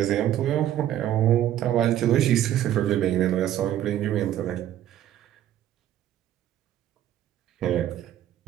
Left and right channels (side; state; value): left; quieter; 12.0 dB